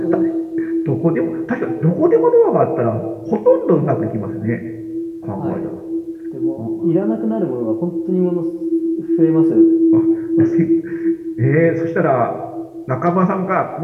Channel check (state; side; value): identical; both; correlation 1.00